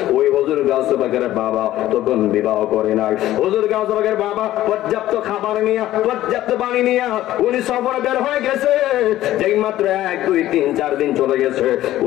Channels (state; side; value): quieter; right; 14.2 dB